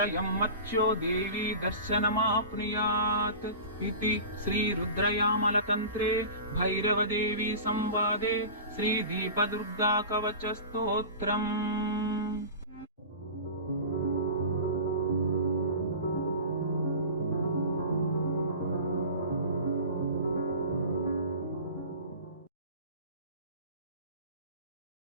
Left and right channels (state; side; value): inverted; both; correlation -0.35